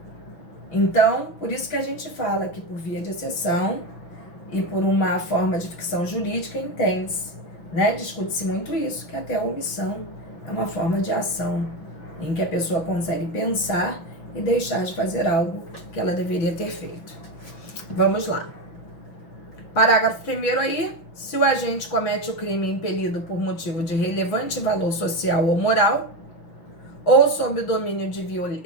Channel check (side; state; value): right; late; 6.0 ms